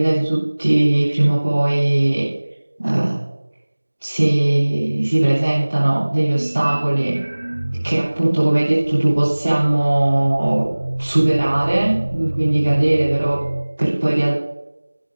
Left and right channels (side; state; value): both; inverted; correlation -1.00